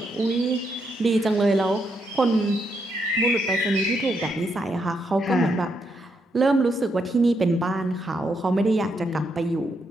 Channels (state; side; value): normal; both; correlation 0.79